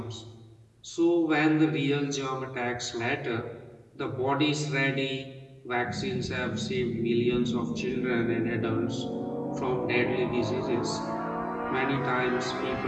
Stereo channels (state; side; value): identical; both; correlation 1.00